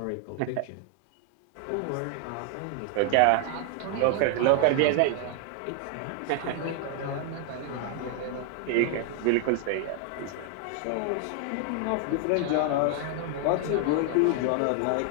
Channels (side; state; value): both; different; correlation 0.00